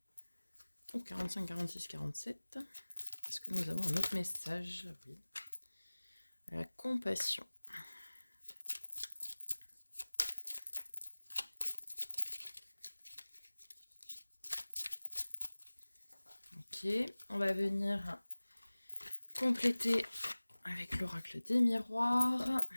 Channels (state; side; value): inverted; both; correlation -1.00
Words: Au 45, 46, 47. Est-ce que nous avons un autre message? Oui. La compassion. Ok, on va venir compléter avec l'oracle des miroirs.